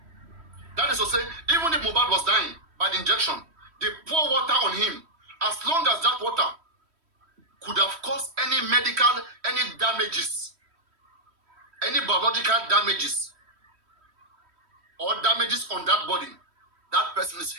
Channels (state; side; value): late; left; 3.1 ms